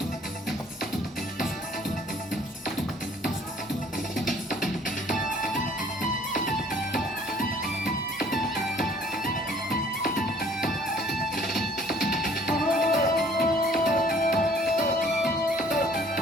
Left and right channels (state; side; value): normal; both; correlation 0.57